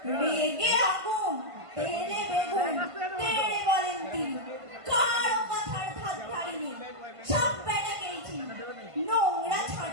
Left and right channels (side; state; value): left; late; 1.5 ms